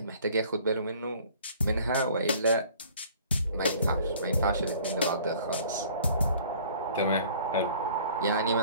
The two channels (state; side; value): inverted; both; correlation -0.52